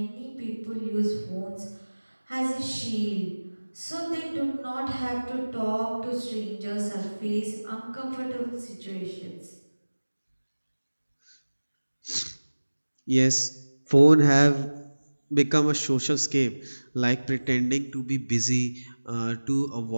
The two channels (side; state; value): both; inverted; correlation -1.00